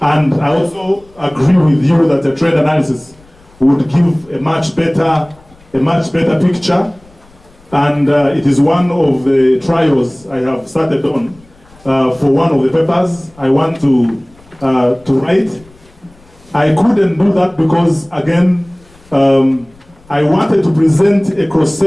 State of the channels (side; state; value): left; noise; rumble, 28 dB below the sound